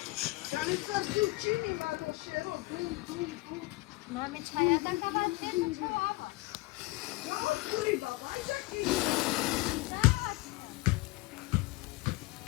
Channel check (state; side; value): quieter; right; 22.1 dB